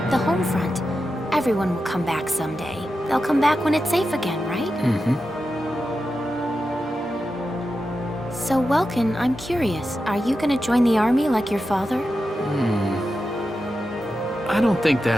the home front. Everyone will come back someday. They'll come back when it's safe again, right? Mm-hmm. So, Welkin, I'm curious. Are you gonna join the army like your father? I don't think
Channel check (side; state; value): both; normal; correlation 0.90